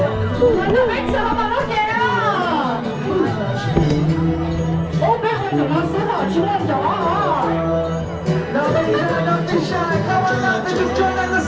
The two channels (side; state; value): both; identical; correlation 1.00